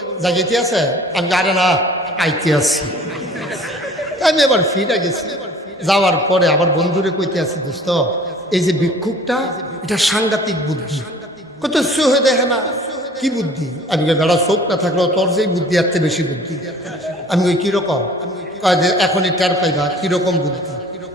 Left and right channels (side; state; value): both; normal; correlation 0.49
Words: জাগিতে আছে? আমি আরে না, আইতে আছি। আমি এবার ফিরে গেছি। যাওয়ার পরে আবার বন্ধুরে কইতে আছি, দোস্ত এই যে ভিক্ষুকটা, এটা সাংঘাতিক বুদ্ধি। কত হয়ে দেখে না, কি বুদ্ধি? আমি বেড়া চোখ না থাকলেও তোর যেই বুদ্ধি এর চেয়ে বেশি বুদ্ধি। আমি ওই কিরকম? এখনই টের পাইবা কিরকম বুদ্ধি।